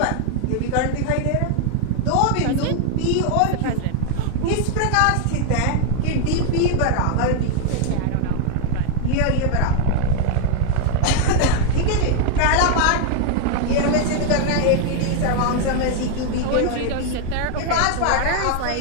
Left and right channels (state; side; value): different; both; correlation 0.00